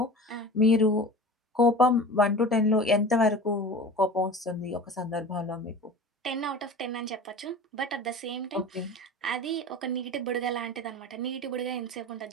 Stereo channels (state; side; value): normal; both; correlation 0.37